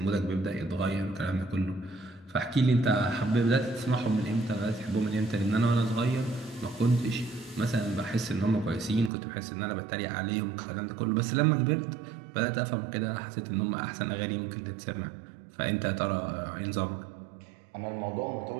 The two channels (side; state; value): left; drops out; at 9.1 s